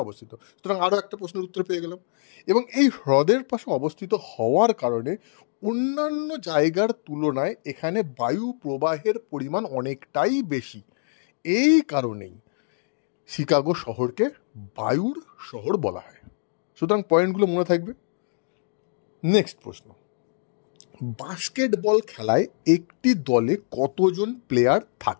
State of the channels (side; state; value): right; silent; digital silence